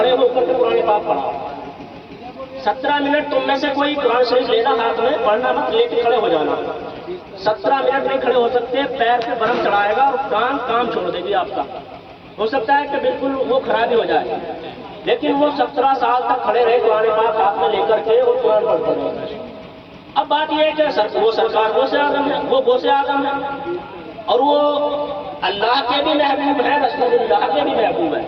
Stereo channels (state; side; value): identical; both; correlation 1.00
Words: ہو کر کے قرآن پاک پڑھا. 17 منٹ تم میں سے کوئی قرآن شریف لینا ہاتھ میں پڑھنا مت، لے کے کھڑے ہو جانا. 17 منٹ نہیں کھڑے ہو سکتے، پیر پہ برم چڑھائے گا اور کام چھوڑ دے گی آپ کا. ہو سکتا ہے کہ بالکل وہ خرابی ہو جائے، لیکن وہ 17 سال تک کھڑے رہے قرآن پاک ہاتھ میں لے کر کے اور قرآن پڑھتے رہے. اب بات یہ ہے کہ وہ سرکار غوث اعظم ہے، وہ غوث اعظم ہے اور وہ اللہ کے بھی محبوب ہے، رسول اللہ کے بھی محبوب